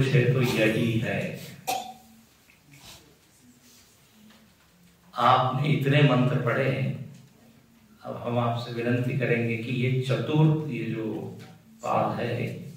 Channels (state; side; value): identical; both; correlation 1.00